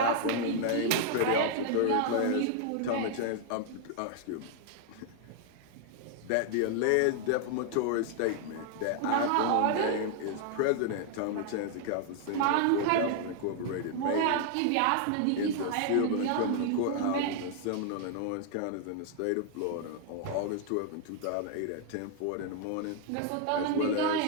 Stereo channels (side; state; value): both; different; correlation 0.00